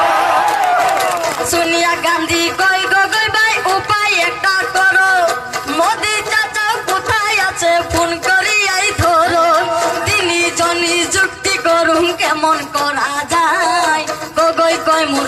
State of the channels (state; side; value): identical; both; correlation 1.00